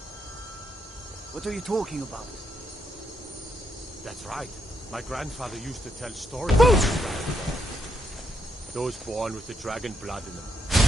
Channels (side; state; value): both; normal; correlation 0.78